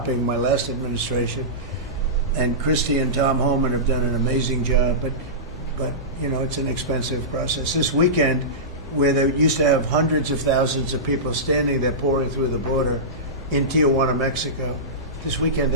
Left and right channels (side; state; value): both; normal; correlation -0.17